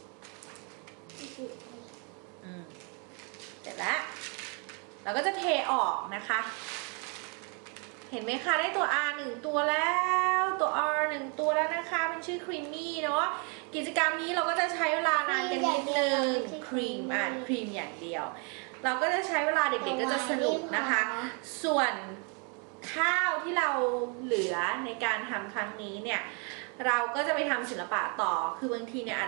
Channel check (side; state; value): left; quieter; 36.0 dB